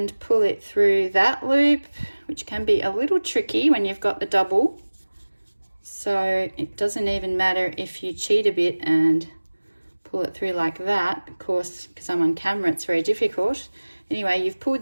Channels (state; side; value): inverted; both; correlation -1.00